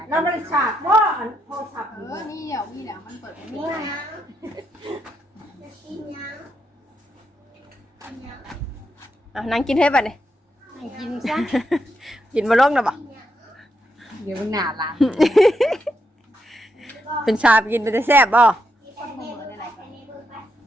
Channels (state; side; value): normal; both; correlation 0.81